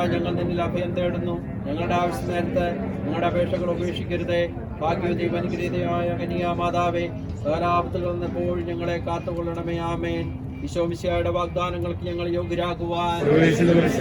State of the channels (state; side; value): identical; both; correlation 1.00